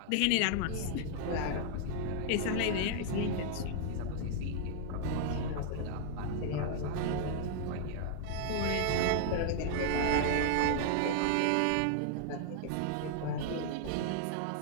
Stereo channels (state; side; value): different; both; correlation 0.00